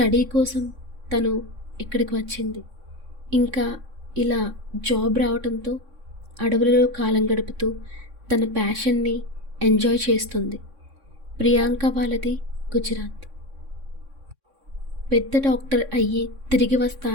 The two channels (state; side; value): late; left; 3.6 ms